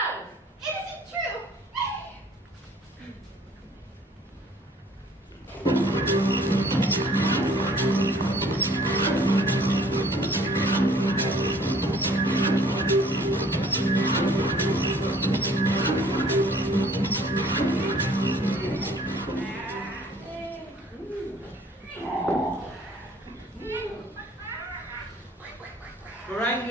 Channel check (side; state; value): both; normal; correlation 0.56